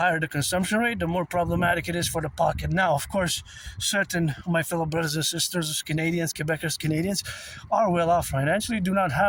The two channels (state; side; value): identical; both; correlation 1.00